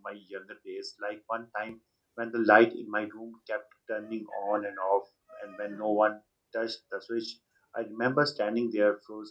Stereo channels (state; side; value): identical; both; correlation 1.00